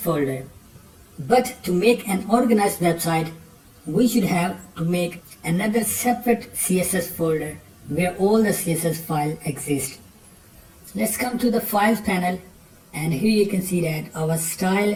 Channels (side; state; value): both; identical; correlation 1.00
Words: But to make an organized website, we should have to make another separate CSS folder where all the CSS files exist. Let's come to the files panel, and here you can see that our